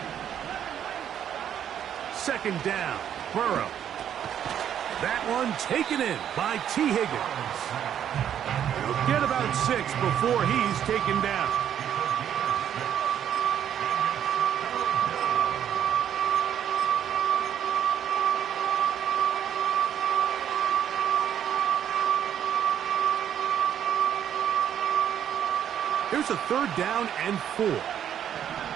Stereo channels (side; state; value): left; quieter; 9.6 dB